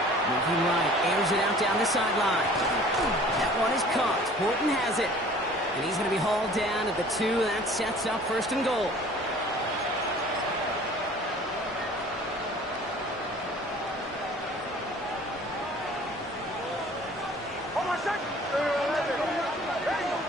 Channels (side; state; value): both; normal; correlation 0.49